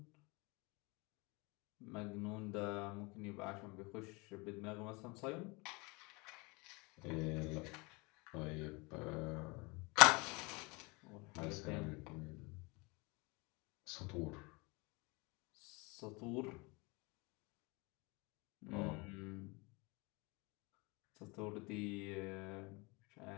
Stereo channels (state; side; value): quieter; right; 27.2 dB